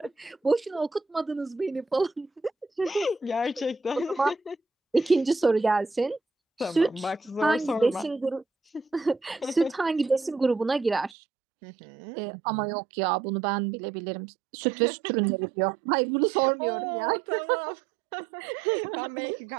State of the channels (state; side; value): drops out; left; at 11.1 s